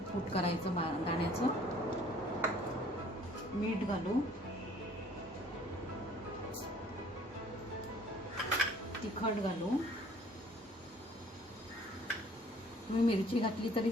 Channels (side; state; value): both; normal; correlation 0.55